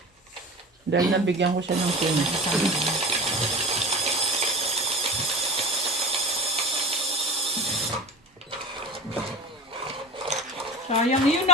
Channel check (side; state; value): both; normal; correlation 0.33